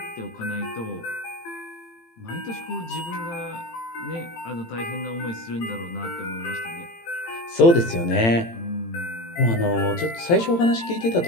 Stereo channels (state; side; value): late; right; 18 ms